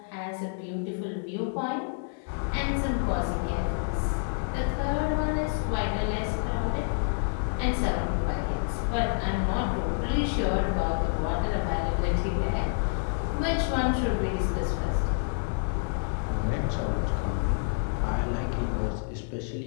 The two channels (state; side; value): silent; right; digital silence